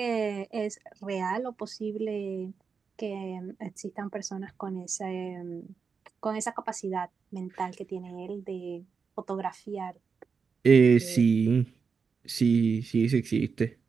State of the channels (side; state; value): left; quieter; 5.5 dB